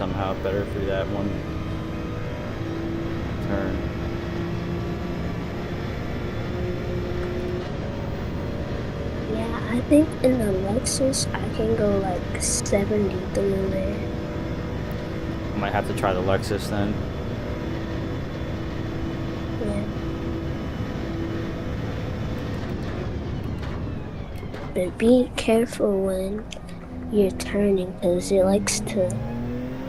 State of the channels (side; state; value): both; identical; correlation 1.00